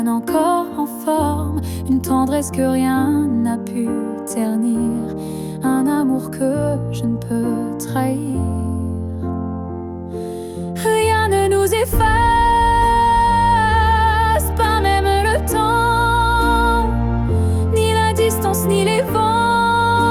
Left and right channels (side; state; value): both; identical; correlation 1.00